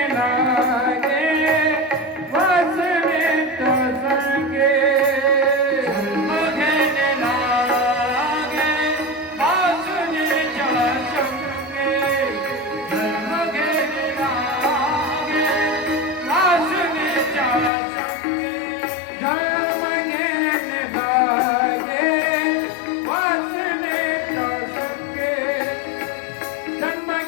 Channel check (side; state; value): right; drops out; at 17.7 s